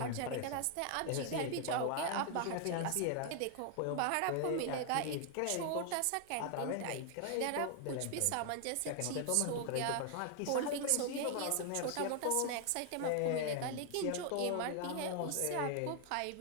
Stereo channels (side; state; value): both; different; correlation 0.00